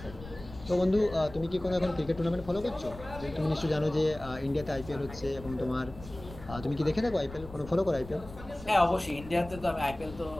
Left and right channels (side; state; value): left; noise; rumble, 15 dB below the sound